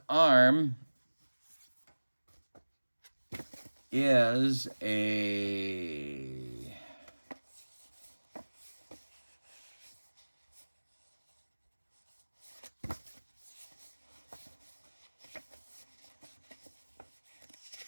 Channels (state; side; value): inverted; both; correlation -1.00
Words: arm is a...